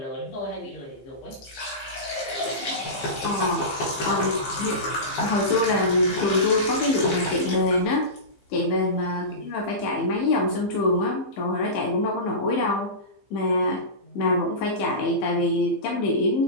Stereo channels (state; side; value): late; right; 15 ms